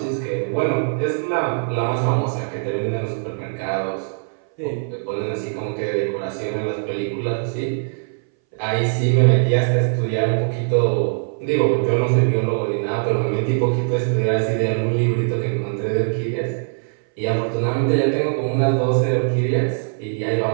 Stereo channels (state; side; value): silent; left; 62 dB below the other